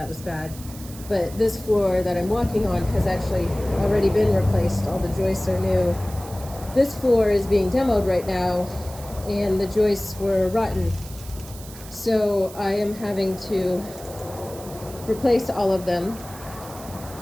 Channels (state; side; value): noise; right; hiss, 17 dB below the sound